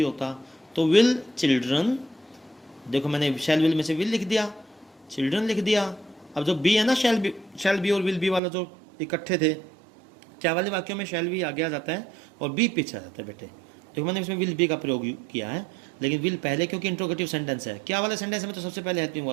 होता, तो विल चिल्ड्रन, देखो मैंने शैल विल में से विल लिख दिया, चिल्ड्रन लिख दिया। अब जो बी है ना, शैल बी और विल बी वाला जो इकट्ठे थे, क्या वाले वाक्यों में शैल बी आगे आ जाता है और बी पीछे आ जाता है बेटे। देखो मैंने इसमें विल बी का प्रयोग किया है, लेकिन विल पहले, क्योंकि इंट्रोगेटिव सेंटेंस है। क्या वाले सेंटेंस में तो सबसे पहले हेल्पिंग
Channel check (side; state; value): left; drops out; at 8.4 s